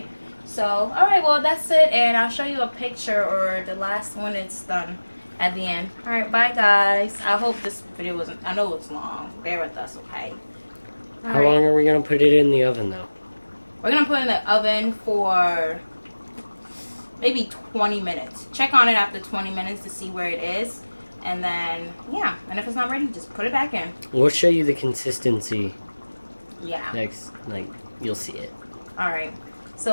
So, alright, well, that's it. And I'll show you a picture or the last one it's done at the end. Alright, bye, guys. I hope this video wasn't... I know it's long. Bear with us, okay? How long are we going to put it in the oven, though? We're going to put it in the oven for maybe 20 minutes. Check on it after 20 minutes to see where it is. And then, yeah. And if it's not ready, just put it back in. We'll show you the consistency. Yeah. Next, you'll see it. Alright.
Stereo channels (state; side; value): inverted; both; correlation -1.00